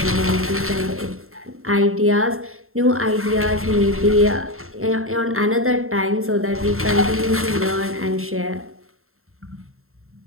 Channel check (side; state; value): left; late; 0.62 ms